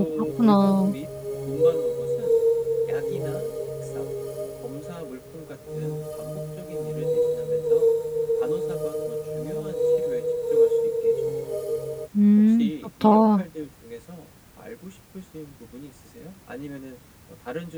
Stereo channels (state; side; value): identical; both; correlation 1.00